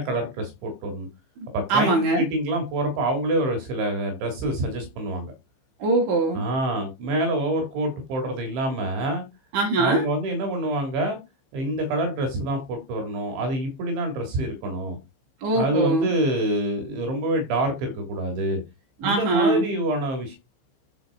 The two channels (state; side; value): late; left; 15 ms